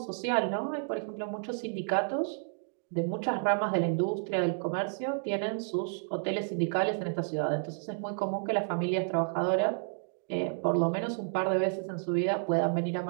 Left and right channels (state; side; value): silent; left; digital silence